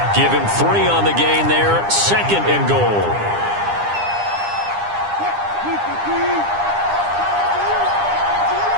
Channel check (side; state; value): left; late; 9.9 ms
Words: Give him 3 on the gain there, 2nd and goal.